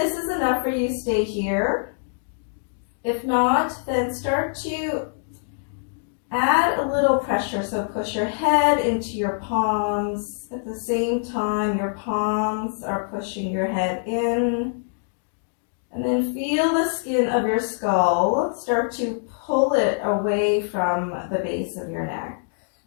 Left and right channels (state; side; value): silent; right; digital silence